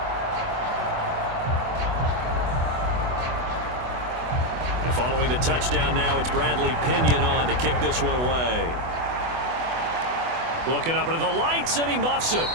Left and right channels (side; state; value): left; late; 24 ms